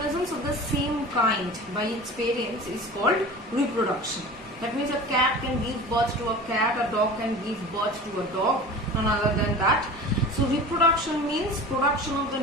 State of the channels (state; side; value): normal; both; correlation 0.36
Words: of the same kind by its parents is called reproduction. That means a cat can give birth to a cat, a dog can give birth to a dog, none other than that. So reproduction means production of the